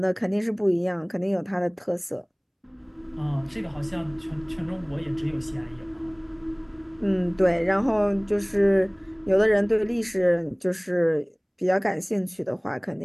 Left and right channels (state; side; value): identical; both; correlation 1.00